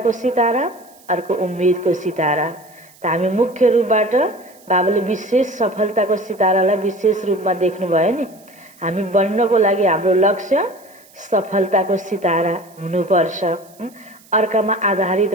सितारा, अर्को उम्मेदको सितारा। त हामी मुख्य रूपबाट बाबाले विशेष सफलताको सितारालाई विशेष रूपमा देख्नुभयो नि। हामी बन्नको लागि हाम्रो लक्ष्य सफलताको सितारा हुनुपर्छ। अर्कामा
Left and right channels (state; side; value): noise; right; hiss, 27 dB below the sound